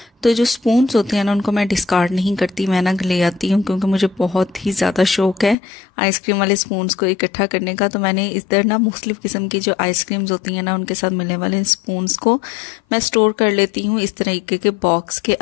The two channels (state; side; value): drops out; right; at 5.6 s